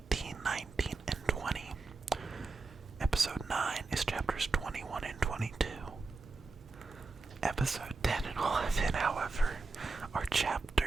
19, and 20. Episode 9 is chapters 21 and 22. Episode 10 and 11, however, are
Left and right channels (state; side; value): quieter; left; 3.8 dB